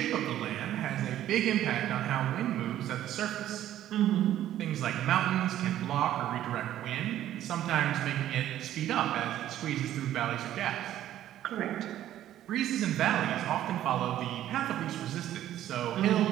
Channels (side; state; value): left; quieter; 12.4 dB